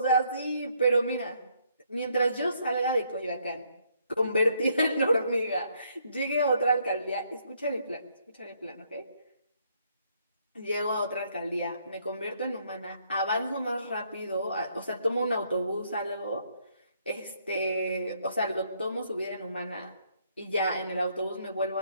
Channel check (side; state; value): both; inverted; correlation -0.70